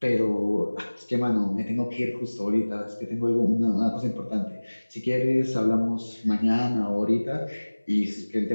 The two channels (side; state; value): both; inverted; correlation -1.00